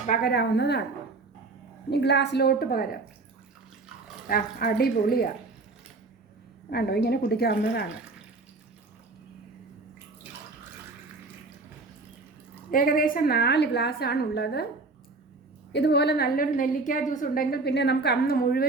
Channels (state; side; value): quieter; left; 3.6 dB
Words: പകരാവുന്നതാണ്. ഇനി ഗ്ലാസ്സിലോട്ട് പകരാം. അടിപൊളിയാണ്. കണ്ടോ, ഇങ്ങനെ കുടിക്കാവുന്നതാണ്. ഏകദേശം 4 ഗ്ലാസ്സാണ് ഉള്ളത്. ഇതുപോലെ നല്ലൊരു നെല്ലിക്ക ജ്യൂസ് ഉണ്ടെങ്കിൽ പിന്നെ നമുക്ക് അന്ന്